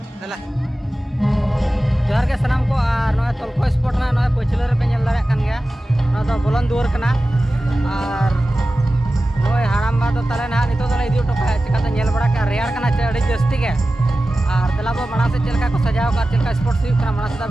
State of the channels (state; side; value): normal; both; correlation 0.95